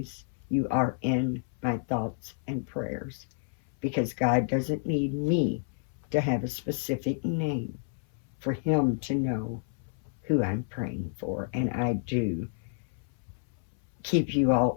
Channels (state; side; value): silent; right; 58 dB below the other